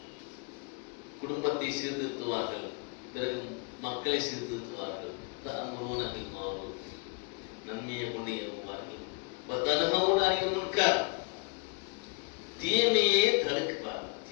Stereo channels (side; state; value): right; quieter; 33.4 dB